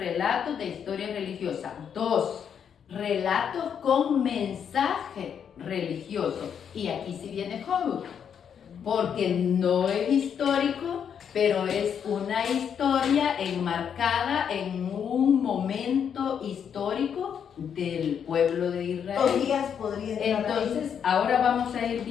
de historia religiosa. 2, relatos con mensaje religioso. Y aquí sí viene Job, porque no es histórico, pero es una historia enmarcada en un momento histórico del pueblo de Israel. Tobías podría entrar. Entonces, ahora vamos a ir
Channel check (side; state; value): right; quieter; 7.9 dB